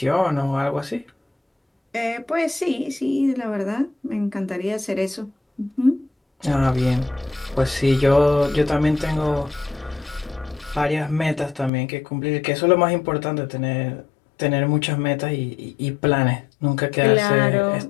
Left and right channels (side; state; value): right; drops out; at 11.7 s